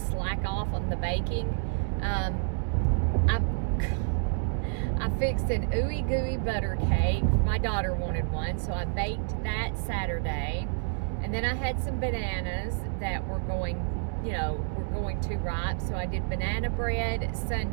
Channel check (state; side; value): silent; left; 59 dB below the other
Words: off on the baking. I fixed an ooey gooey butter cake. My daughter wanted one, so I baked that Saturday. And then I had some bananas that were going too ripe, so I did banana bread